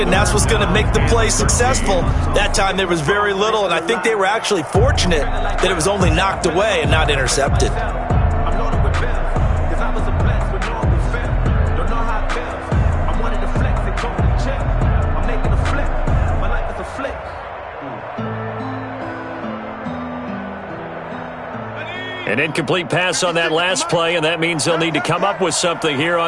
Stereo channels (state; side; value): identical; both; correlation 1.00